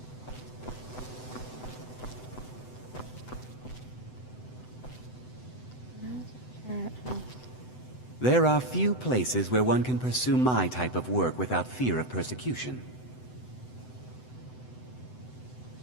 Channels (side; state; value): right; late; 7.9 ms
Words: There are few places where one can pursue my type of work without fear of persecution.